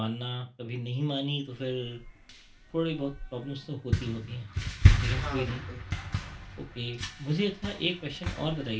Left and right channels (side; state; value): both; identical; correlation 1.00